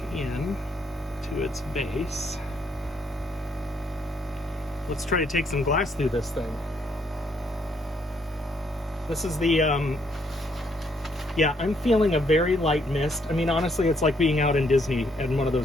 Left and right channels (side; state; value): both; normal; correlation 0.71